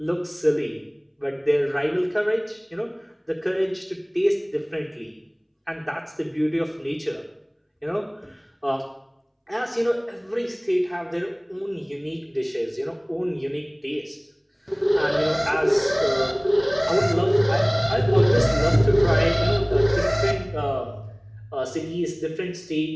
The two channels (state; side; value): identical; both; correlation 1.00